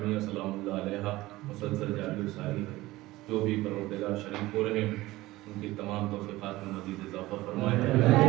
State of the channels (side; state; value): left; quieter; 18.3 dB